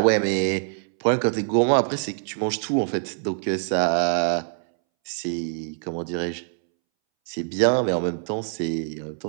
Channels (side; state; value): left; silent; 62 dB below the other